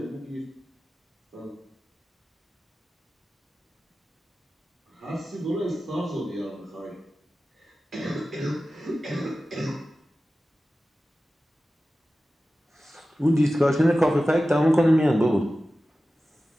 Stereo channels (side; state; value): both; normal; correlation 0.95